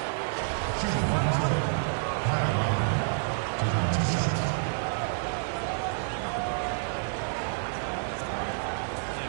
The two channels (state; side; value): silent; left; digital silence